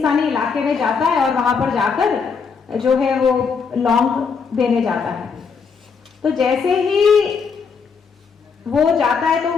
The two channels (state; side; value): quieter; right; 5.7 dB